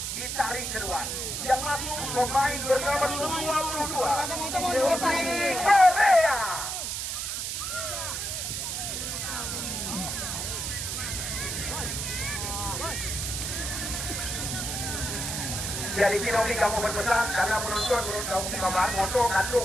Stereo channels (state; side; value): noise; right; hiss, 3 dB below the sound